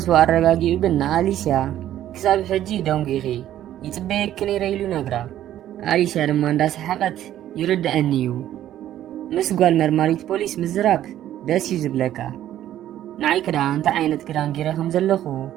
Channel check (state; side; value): quieter; left; 12.2 dB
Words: ኣረጋጊኡ ግን ንኣሊስያ ክሳብ ሕጂ ደንጊኺ يتبيك نيريلو نقرا أليسيا لما انداس حقت يرد أنيو مسقال مرماريت بوليس مزراب داس يزبلكا نعي كدا انت عينت كدان جيرهم زلخو